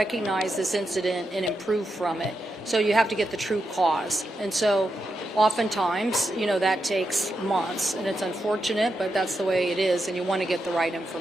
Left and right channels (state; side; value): normal; both; correlation 0.86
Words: this incident and improve from it. So you have to get the true cause. And so oftentimes, that takes months, and it's unfortunate, but that's the way it is, and you want to get the right